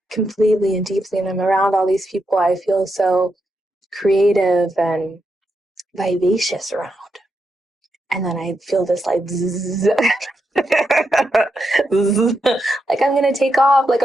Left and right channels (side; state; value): both; normal; correlation 0.84